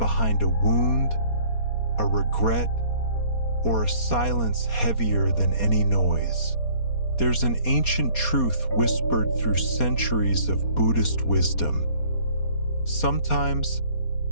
a wound, a regret, or a silence heavier than any noise. There's an ancient truth whispered through centuries of Buddhist wisdom. Sometimes,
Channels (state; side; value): late; right; 4.2 ms